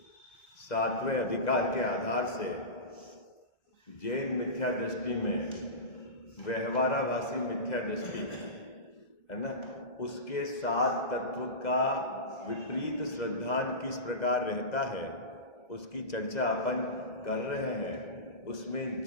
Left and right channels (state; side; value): late; right; 2.0 ms